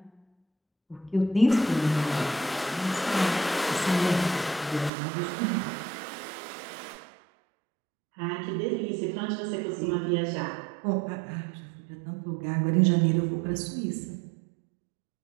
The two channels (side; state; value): left; drops out; at 4.9 s